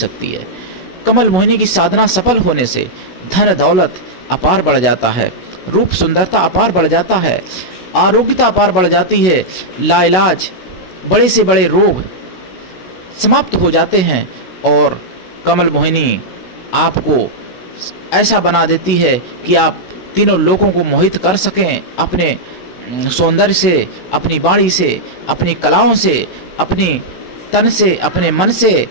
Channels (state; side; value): late; right; 16 ms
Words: है। कमल मोहिनी की साधना सफल होने से धन दौलत अपार बढ़ जाता है, रूप सुंदरता अपार बढ़ जाता है, आरोग्यता अपार बढ़ जाती है, लाइलाज बड़े से बड़े रोग समाप्त हो जाते हैं। और कमल मोहिनी आपको ऐसा बना देती है कि आप तीनों लोगों को मोहित कर सकें अपने सौंदर्य से, अपनी वाणी से, अपनी कलाओं से, अपनी तन से, अपने मन से